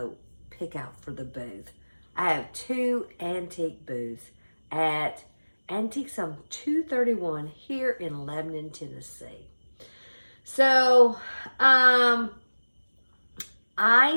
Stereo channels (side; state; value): both; inverted; correlation -1.00